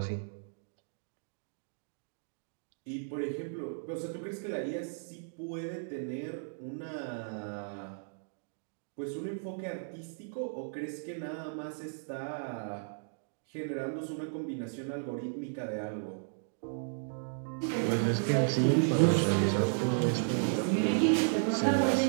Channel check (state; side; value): silent; left; digital silence